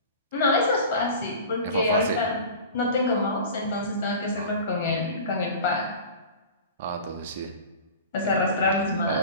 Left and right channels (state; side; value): inverted; both; correlation -0.36